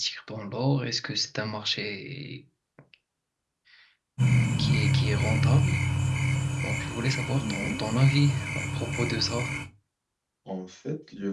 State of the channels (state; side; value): identical; both; correlation 1.00